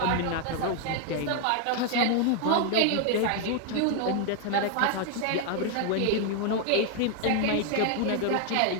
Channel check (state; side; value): different; both; correlation 0.00